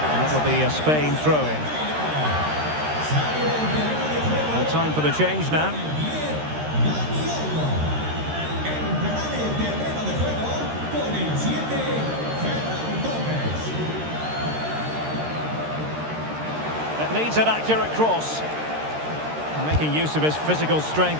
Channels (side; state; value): left; late; 13 ms